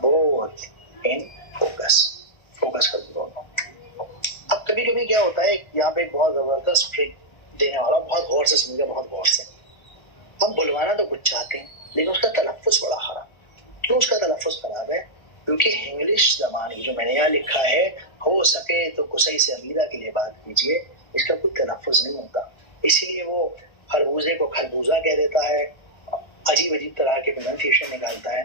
both in focus कर दो दोनों। अब कभी कभी क्या होता है, यहाँ पे एक बहुत जबरदस्त ट्रिक देने वाला, बहुत गौर से समझिए, बहुत गौर से। हम बुलवाना तो कुछ चाहते हैं, लेकिन उसका तलफ्फुज़ बड़ा खराब। क्यों उसका तलफ्फुज़ खराब है, क्योंकि इंग्लिश जबान जो मैंने यहाँ लिखा है, हो सके तो कुसई से अमीरा के लिए बात कीजिए, इसका कोई तलफ़ुज़ नहीं होता, इसीलिए वो खरबूजे को खरबूजा कह देता है, अजीब अजीब तरह के प्रोनाउंसिएशन निकालता है।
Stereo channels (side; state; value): right; late; 1.4 ms